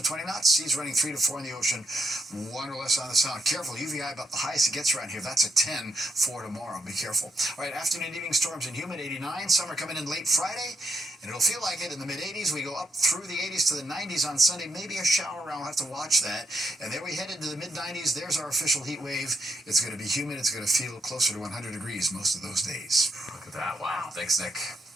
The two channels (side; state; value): both; normal; correlation 0.79